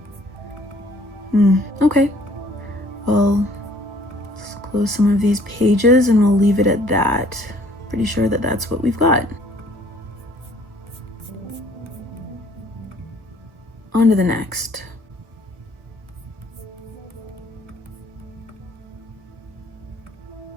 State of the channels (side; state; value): left; late; 1.1 ms